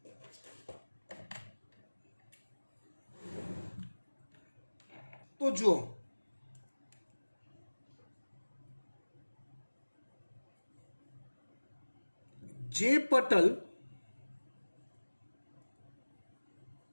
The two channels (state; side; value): inverted; both; correlation -1.00